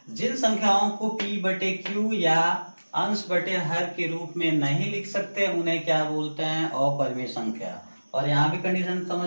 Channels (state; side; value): inverted; both; correlation -1.00